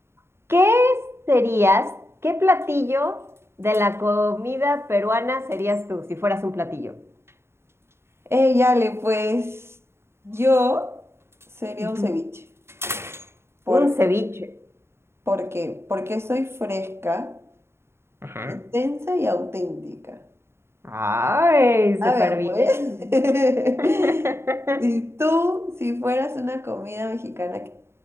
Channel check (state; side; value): late; left; 0.12 ms